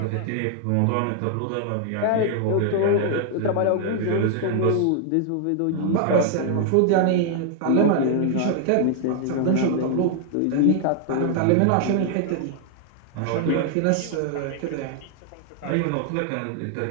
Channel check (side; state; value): both; different; correlation 0.00